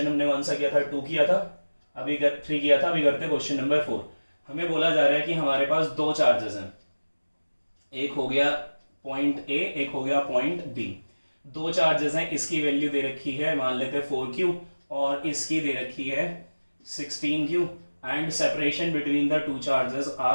हमने कौन सा किया था? 2 किया था, अभी 3 किया था, अभी करते क्वेश्चन नंबर 4। हमें बोला जा रहा है कि हमारे पास दो चार्जेस हैं, एक हो गया पॉइंट A, एक हो गया पॉइंट B। दो चार्जेस हैं, इसकी वैल्यू दे रखी है मान लेते हैं 4Q, और इसकी दे रखी है 16Q, and separation between the two charges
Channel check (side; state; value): both; inverted; correlation -1.00